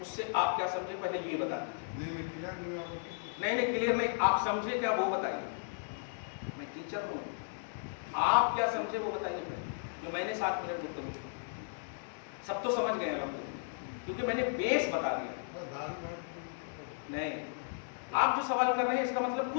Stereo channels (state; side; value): silent; right; digital silence